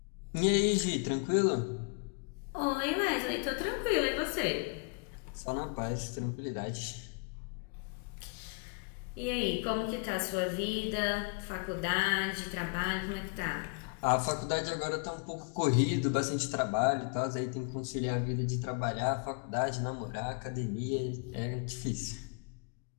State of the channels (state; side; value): quieter; right; 34.1 dB